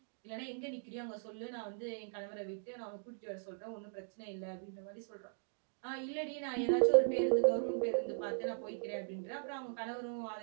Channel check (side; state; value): left; silent; digital silence